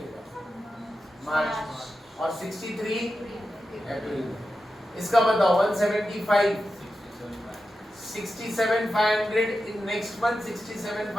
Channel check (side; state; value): both; normal; correlation 0.90